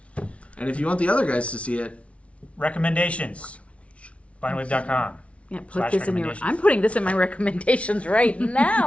And if you want the other guys to see it, Recommendations. Bindwave.com. Yeah, put this in your. I'm putting this in my recommendations right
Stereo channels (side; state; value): right; late; 0.063 ms